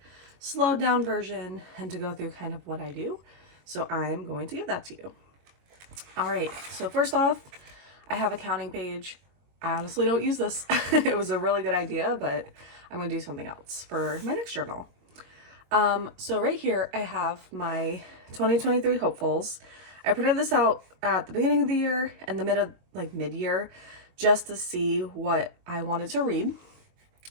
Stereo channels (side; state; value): left; late; 22 ms